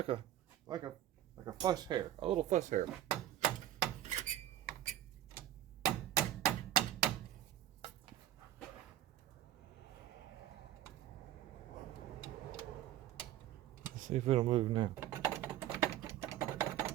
a fuss hair, a little fuss hair. Let's see if it'll move now.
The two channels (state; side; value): quieter; left; 12.7 dB